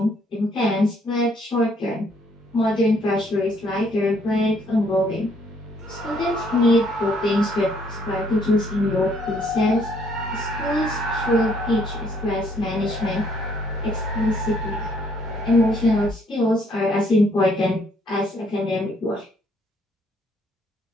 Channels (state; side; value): normal; both; correlation 0.66